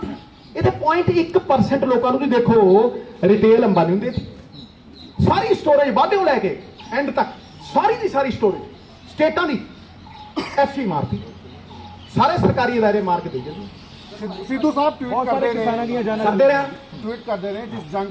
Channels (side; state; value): both; identical; correlation 1.00